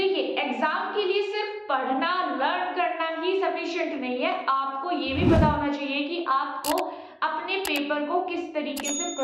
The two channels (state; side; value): identical; both; correlation 1.00